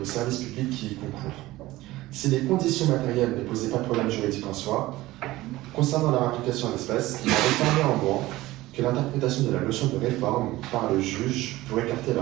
services publics qui y concourent. Si les conditions matérielles ne posaient pas de problème juridique en soi, concernant leur application en l'espèce, il a réformé en moins que l'interprétation de la notion de réforme par le juge pour écarter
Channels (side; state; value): left; quieter; 17.8 dB